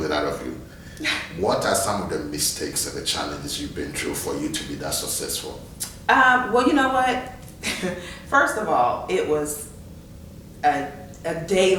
it out of you, what are some of the mistakes and the challenges you've been through for you to be that successful? Well, you know what? First of all, it was a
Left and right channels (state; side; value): identical; both; correlation 1.00